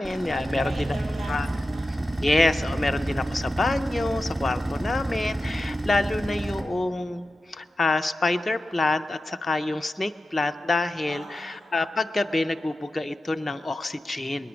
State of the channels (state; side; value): normal; both; correlation 0.93